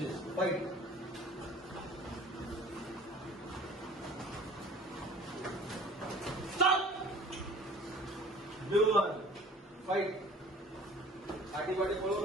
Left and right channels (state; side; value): normal; both; correlation 0.47